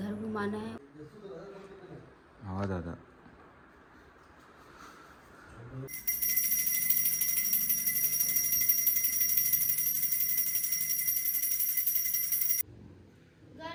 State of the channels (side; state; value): both; identical; correlation 1.00